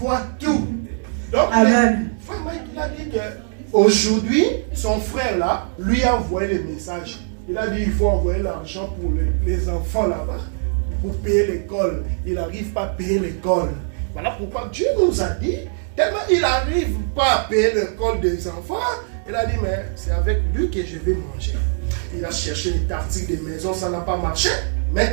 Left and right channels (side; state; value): left; silent; 65 dB below the other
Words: voit tout. Donc Amen. Frère Mike, il a dit qu'aujourd'hui, son frère là, lui a envoyé le message. Il a dit qu'il faut envoyer l'argent pour les enfants là-bas, pour payer l'école. Il n'arrive pas à payer l'école. Voilà pourquoi Dieu nous a dit, tellement il n'arrive pas à payer l'école des enfants, il a dit, mais c'est avec lui que je vais manger. Il a cherché les tartiques des maisons, ça n'a pas marché.